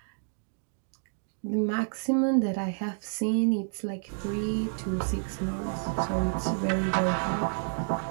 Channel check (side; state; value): left; silent; digital silence